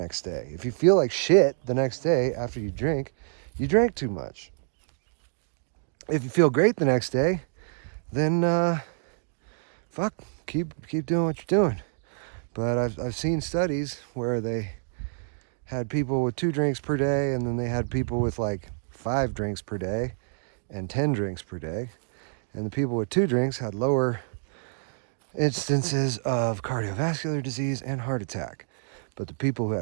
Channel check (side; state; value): left; silent; digital silence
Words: day. If you feel like shit the next day after you drink, you drank too much. If you feel great the next day, then fuck, keep doing what you're doing. But I've seen studies where they had people with 2 drinks per day, and then they had people with like 5 drinks per day and 10 drinks per day. And the people with 2 drinks had lower instances of cardiovascular disease and heart attack. But the people who